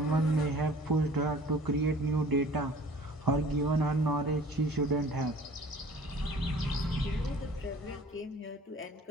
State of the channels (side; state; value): both; normal; correlation 0.49